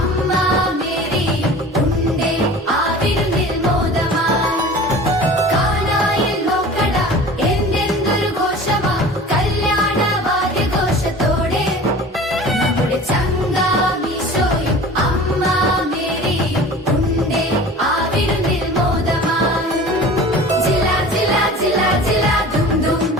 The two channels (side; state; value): both; normal; correlation 0.40